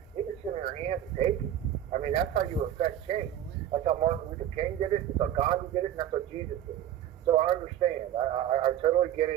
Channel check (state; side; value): quieter; left; 11.2 dB